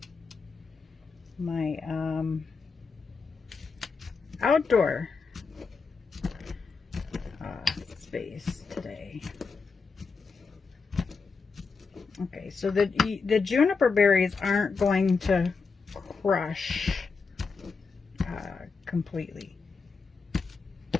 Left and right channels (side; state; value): right; quieter; 4.8 dB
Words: my outdoor space today. Okay, so the juniper berries aren't going to crush completely.